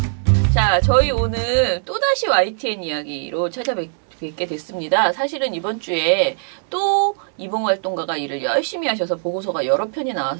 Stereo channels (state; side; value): silent; left; digital silence